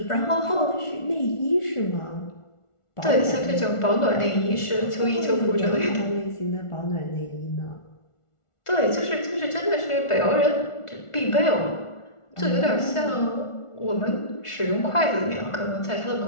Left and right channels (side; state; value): right; late; 1.4 ms